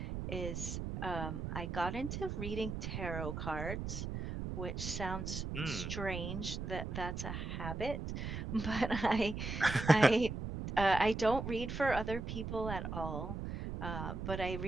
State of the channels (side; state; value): right; noise; rumble, 5 dB below the sound